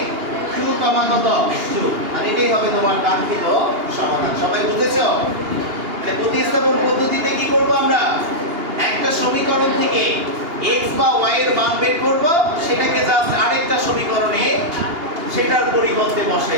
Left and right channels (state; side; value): late; left; 2.8 ms